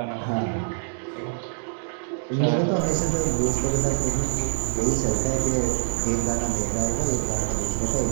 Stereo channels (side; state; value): left; silent; digital silence